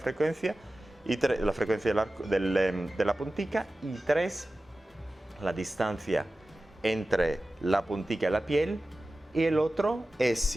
y la frecuencia de la puntica; y tres, la distancia entre la puntica y la piel. Y el otro es,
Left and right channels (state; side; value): normal; both; correlation 0.95